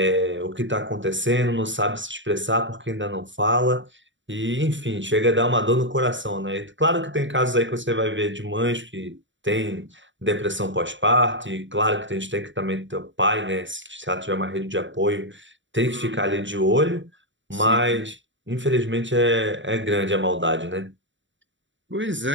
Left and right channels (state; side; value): late; left; 0.54 ms